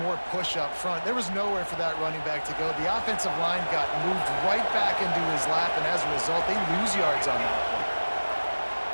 more push up front. There was nowhere for that running back to go. The offensive line got moved right back into his lap, and as a result, they lose yards on that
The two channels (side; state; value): both; inverted; correlation -1.00